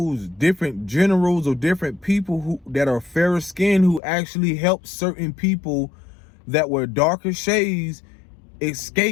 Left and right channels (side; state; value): right; drops out; at 4.0 s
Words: different generals or different people who that are fairer skinned who actually helped certain people that were darker shades